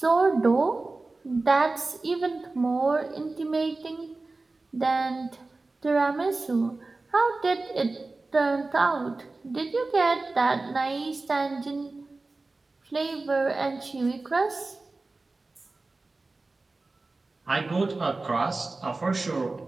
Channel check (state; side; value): quieter; left; 3.4 dB